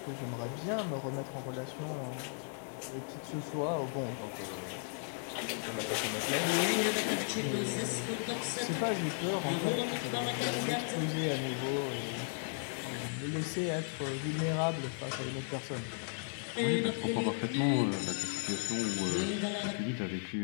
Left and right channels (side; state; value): right; silent; 54 dB below the other